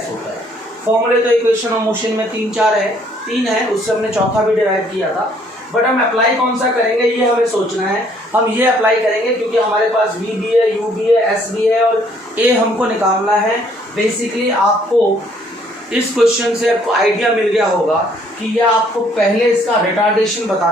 होता है। फॉर्मूले तो इक्वेशन ऑफ मोशन में 3 है, उससे हमने चौथा भी डिराइव किया था। बट हम अप्लाई कौन सा करेंगे ये हमें सोचना है। हम ये अप्लाई करेंगे क्योंकि हमारे पास v भी है, u भी है, s भी है और a हमको निकालना है। बेसिकली आपको इस क्वेश्चन से आपको आइडिया मिल गया होगा कि यह आपको पहले इसका रिटार्डेशन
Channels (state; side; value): normal; both; correlation 0.64